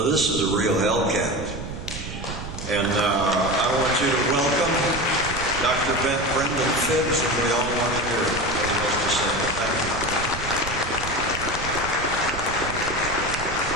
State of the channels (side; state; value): right; noise; rumble, 9 dB below the sound